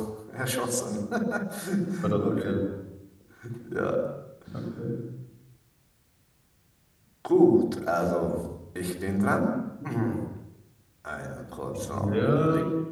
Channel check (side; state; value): both; identical; correlation 1.00